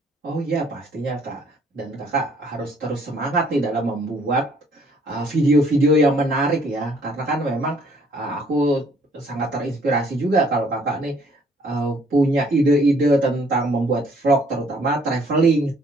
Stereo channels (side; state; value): both; normal; correlation 0.61